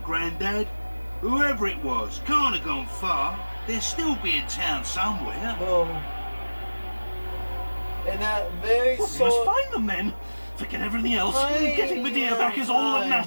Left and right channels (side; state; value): both; inverted; correlation -1.00